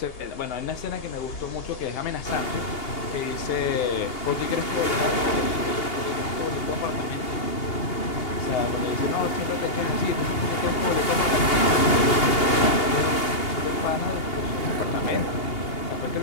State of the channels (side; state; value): right; late; 2.8 ms